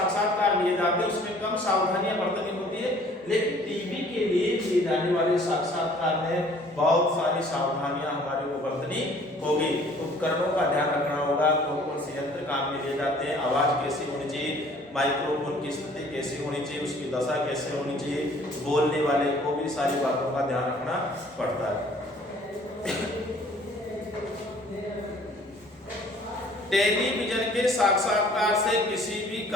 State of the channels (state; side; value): normal; both; correlation 0.54